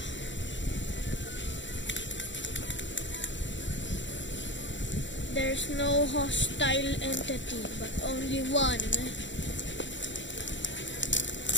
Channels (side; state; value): right; late; 0.54 ms